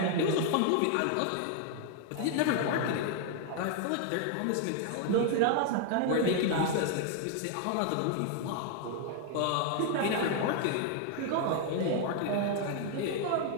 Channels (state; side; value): different; both; correlation 0.00